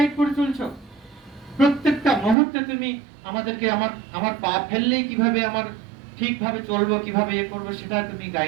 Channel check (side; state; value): left; drops out; at 2.4 s